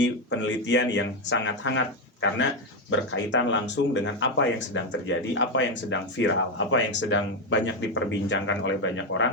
penelitian yang sangat hangat karena berkaitan langsung dengan apa yang sedang terjadi, apa yang sedang viral, apa yang sedang banyak diperbincangkan oleh banyak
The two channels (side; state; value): both; normal; correlation 0.08